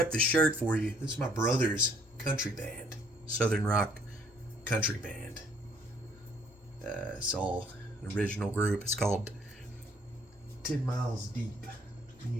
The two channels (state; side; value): normal; both; correlation 0.62